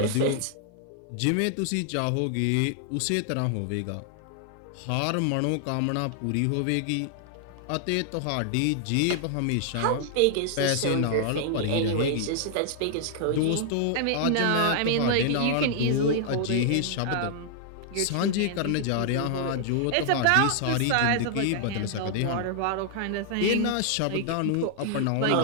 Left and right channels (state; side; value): different; both; correlation -0.01